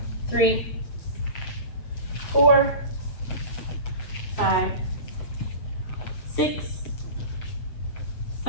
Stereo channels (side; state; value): right; late; 7.8 ms